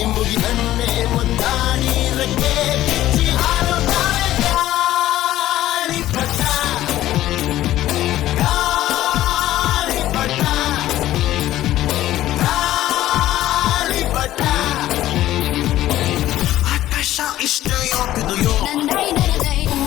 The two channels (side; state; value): right; quieter; 14.2 dB